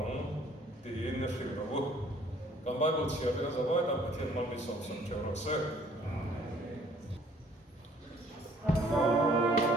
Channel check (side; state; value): both; normal; correlation 0.58